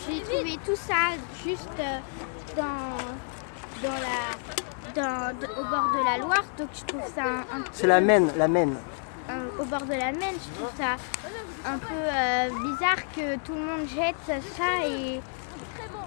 j'ai trouvé tout ça juste au bord de la Loire, donc je trouve ça C'est la Maine, au bord de la Maine, je trouve ça un peu bizarre que tout le monde jette ça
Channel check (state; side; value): silent; right; 58 dB below the other